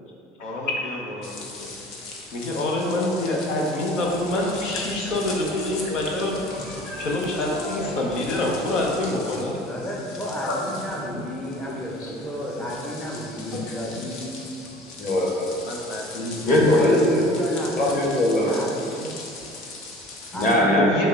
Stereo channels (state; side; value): normal; both; correlation 0.45